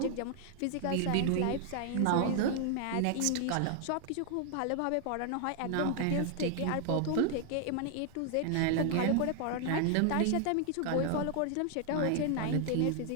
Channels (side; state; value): both; different; correlation 0.00